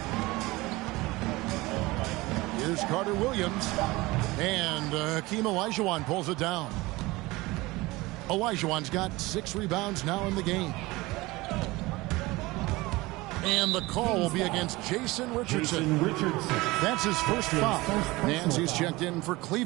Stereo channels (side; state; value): left; quieter; 21.2 dB